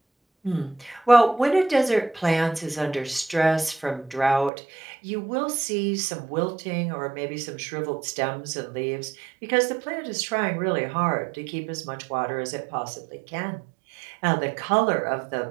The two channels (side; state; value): left; drops out; at 4.5 s